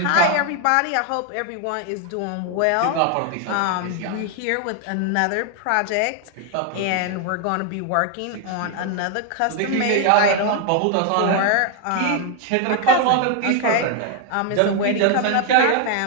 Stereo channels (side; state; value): both; different; correlation 0.01